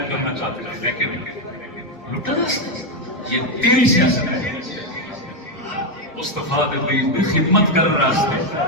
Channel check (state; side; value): normal; both; correlation 0.05